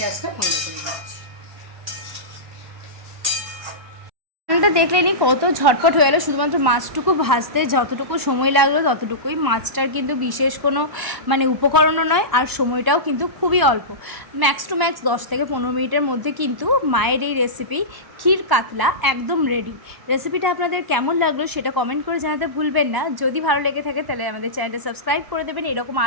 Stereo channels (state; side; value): late; left; 1.0 ms